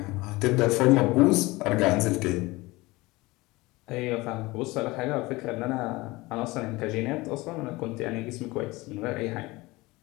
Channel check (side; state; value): right; quieter; 21.6 dB